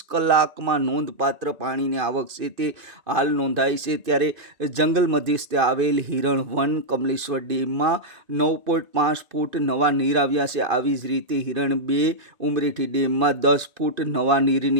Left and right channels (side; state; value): left; late; 2.5 ms